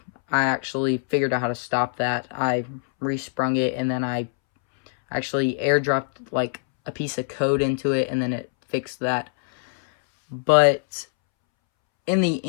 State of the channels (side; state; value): right; silent; 63 dB below the other